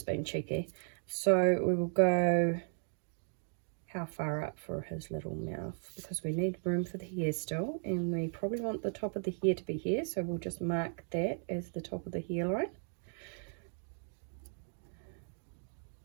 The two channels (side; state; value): left; silent; 54 dB below the other